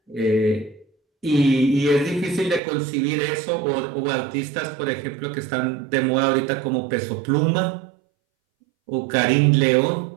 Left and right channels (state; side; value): drops out; left; at 2.6 s